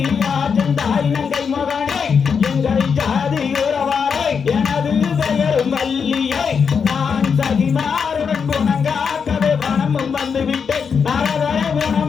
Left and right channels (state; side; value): quieter; right; 6.2 dB